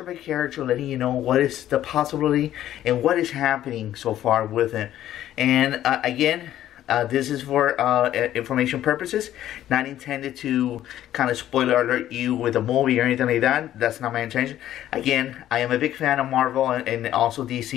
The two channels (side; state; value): right; quieter; 12.4 dB